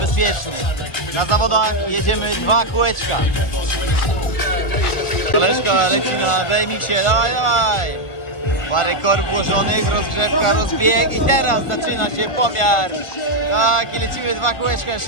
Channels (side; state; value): right; late; 1.4 ms